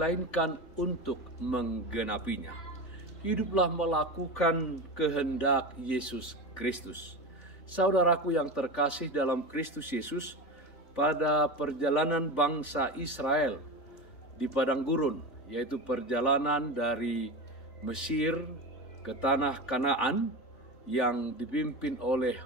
untuk menggenapinya. Hiduplah melakukan kehendak Yesus Kristus. Saudaraku yang terkasih dalam Kristus Yesus, pada perjalanan bangsa Israel di padang gurun, yaitu perjalanan dari Mesir ke tanah Kanaan yang dipimpin oleh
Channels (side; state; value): right; late; 3.5 ms